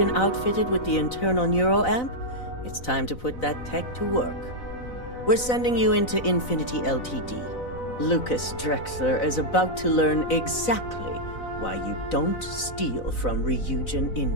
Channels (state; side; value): late; right; 4.0 ms